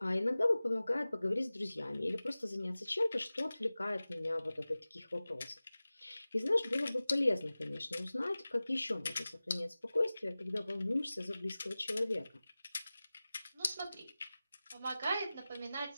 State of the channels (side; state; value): both; inverted; correlation -0.97